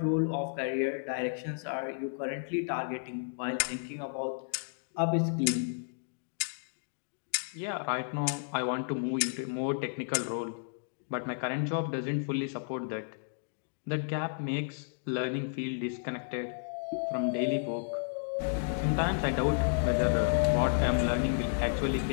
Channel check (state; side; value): silent; right; digital silence